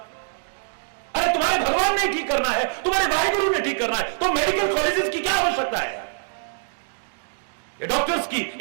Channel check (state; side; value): silent; left; digital silence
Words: अरे तुम्हारे भगवान ने ठीक करना है, तुम्हारे वाहेगुरु ने ठीक करना है, तो मेडिकल कॉलेजेस की क्या आवश्यकता है? ये डॉक्टर्स की,